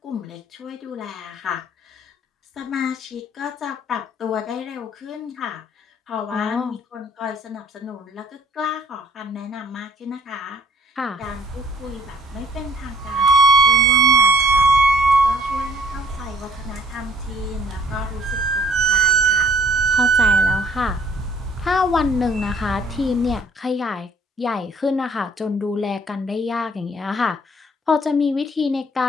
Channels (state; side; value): normal; both; correlation 0.59